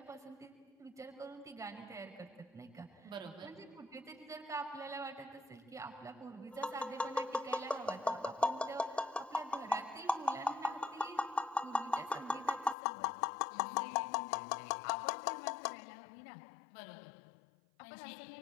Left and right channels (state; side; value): drops out; right; at 12.8 s